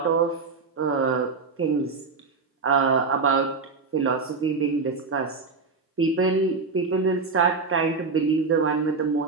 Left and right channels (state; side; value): quieter; left; 4.5 dB